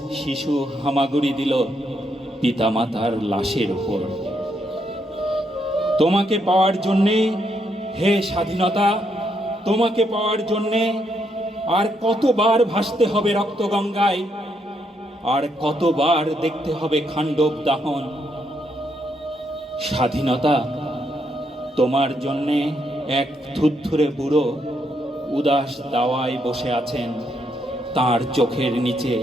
শিশু হামাগুড়ি দিল পিতামাতার লাশের উপর। তোমাকে পাওয়ার জন্যে হে স্বাধীনতা, তোমাকে পাওয়ার জন্যে আর কতবার ভাসতে হবে রক্তগঙ্গায়, আর কতবার দেখতে হবে খাণ্ডব দাহন। স্বাধীনতা, তোমার জন্যে এক থুরথুরে বুড়ো উদাস দাওয়ায় বসে আছেন, তার চোখের নিচে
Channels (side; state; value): both; normal; correlation 0.77